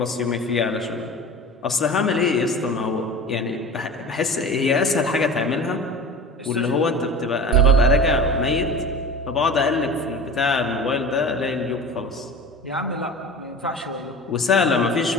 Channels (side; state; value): both; normal; correlation 0.36